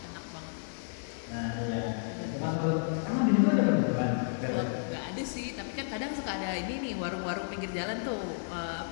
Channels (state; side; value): silent; right; 56 dB below the other